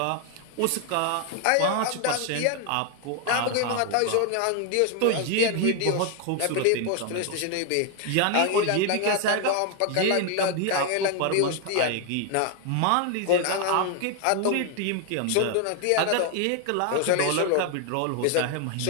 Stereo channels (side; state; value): both; different; correlation 0.01